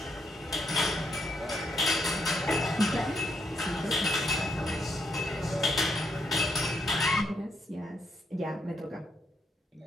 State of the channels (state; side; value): normal; both; correlation 0.76